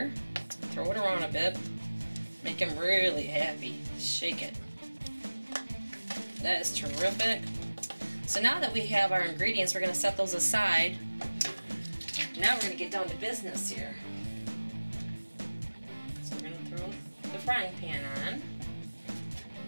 throw it around a bit, make them really happy. Shake it. That is terrific. So now that we have our ingredients, we're going to set those aside. Now we're going to get down to business here. So we're going to throw the frying pan on.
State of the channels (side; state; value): both; inverted; correlation -1.00